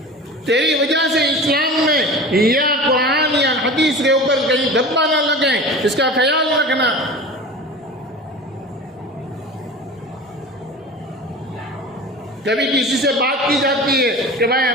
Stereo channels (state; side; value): normal; both; correlation 0.35